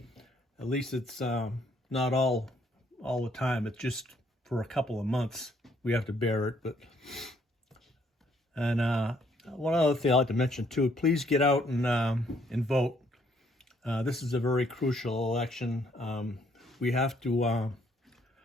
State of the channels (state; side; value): normal; both; correlation 0.67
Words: at least it's not all the time. It's just for a couple of months we have to bear it. And one other thing I'd like to mention too: please get out and vote. This is a very crucial election. We have to